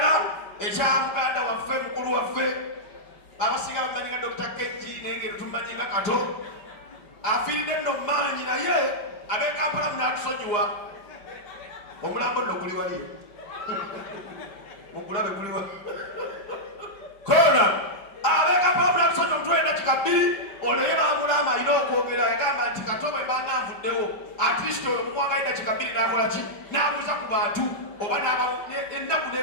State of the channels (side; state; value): right; late; 4.9 ms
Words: ekya muganda waffe mukulu waffe abasinga bamanyiga Dr. Keji nengeri tumanyiga kato afiiridde nno maanyi naye ab'Ekampala munatusonyiwa omulambo nno guli wali mugulabe guliwa kona ab'Ekampala munatusonyiwa omutwe eddakiika 2 ono ye bamulama alina okwogera agamba nti kato bwe mbanga nvuddewo atleast ono mukwanga eddakiika 2 n'akola ki n'abuuza ku bantu oba ennaku